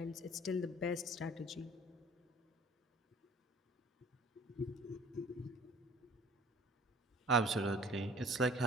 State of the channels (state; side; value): normal; both; correlation 0.50